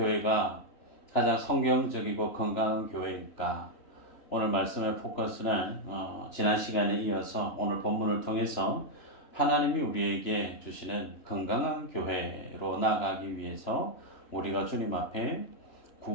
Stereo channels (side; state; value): right; late; 3.1 ms